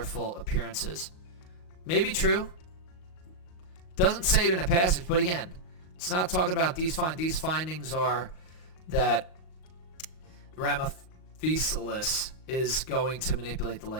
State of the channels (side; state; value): right; late; 38 ms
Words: appearances. Maybe true. Doesn't say it in a passage, but again, it's not talking about these findings. These findings are that Ramphocelus is going to manipulate the